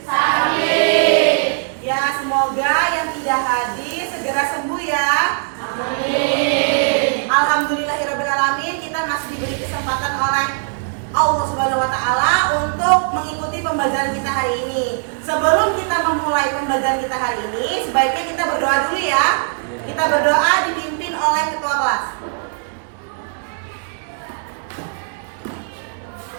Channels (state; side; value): silent; left; 66 dB below the other